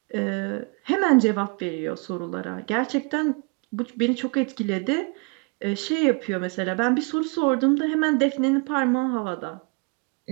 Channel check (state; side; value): quieter; left; 32.4 dB